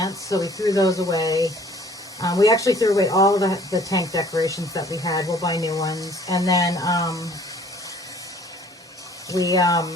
So we threw those away. We actually threw away all of the tank decorations that we had. We'll buy new ones. And then we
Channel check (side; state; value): both; normal; correlation 0.54